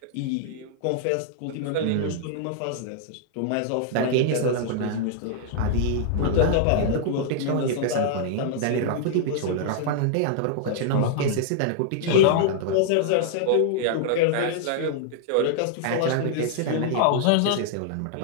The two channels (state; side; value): different; both; correlation -0.01